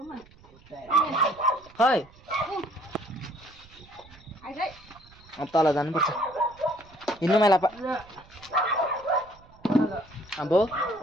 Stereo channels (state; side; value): noise; right; rumble, 25 dB below the sound